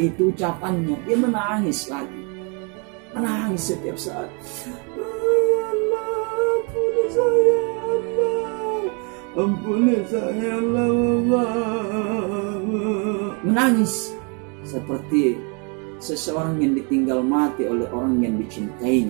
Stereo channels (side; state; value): left; quieter; 35.1 dB